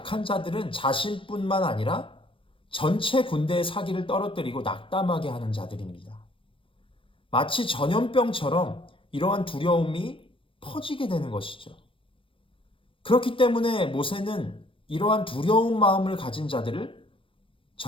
자들은 자신뿐만 아니라 전체 군대의 사기를 떨어뜨리고 낙담하게 하는 자들입니다. 마치 전염병처럼 이러한 두려움이 퍼지게 되는 것이죠. 그렇기 때문에 모세는 이러한 두려운 마음을 가진 자들을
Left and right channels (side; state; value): right; late; 0.25 ms